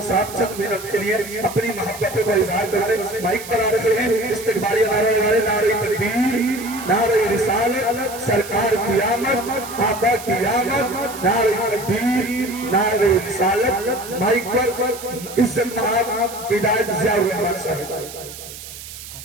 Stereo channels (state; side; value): noise; right; hiss, 13 dB below the sound